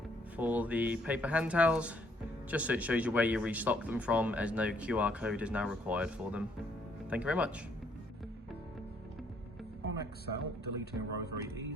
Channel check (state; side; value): normal; both; correlation 0.67